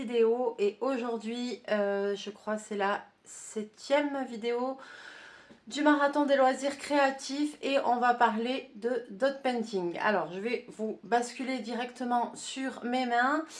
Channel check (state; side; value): identical; both; correlation 1.00